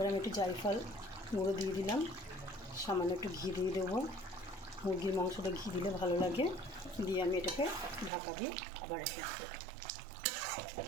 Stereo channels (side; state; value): left; drops out; at 8.1 s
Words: আমি একটু জায়ফল গুঁড়ো দিয়ে দিলাম, সামান্য একটু ঘি দিয়ে দেবো। মুরগির মাংসটা ঘি দিলে ভালো লাগে। দিয়ে আমি এটাকে ঢাকা দিয়ে আবার রেখে দেবো।